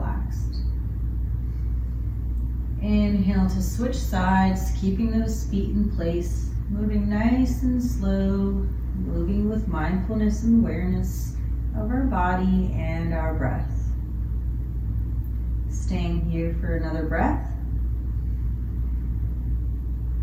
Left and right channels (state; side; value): identical; both; correlation 1.00